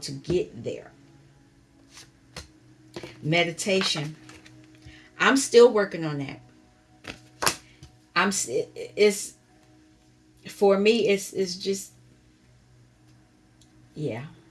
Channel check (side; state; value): both; identical; correlation 1.00